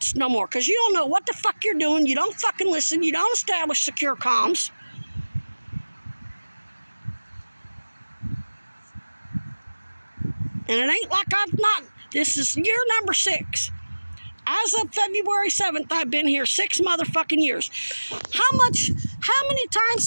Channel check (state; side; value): inverted; both; correlation -1.00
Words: no more, because you don't know what the fuck you're doing. You don't fucking listen. You don't establish secure comms. And it ain't like I've not. This is year number 6. As of February 7th, I've been here 6 motherfucking years. How many times